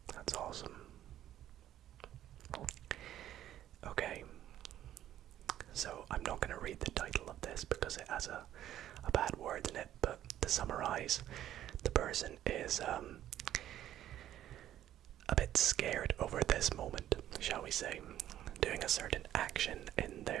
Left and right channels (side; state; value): left; quieter; 12.1 dB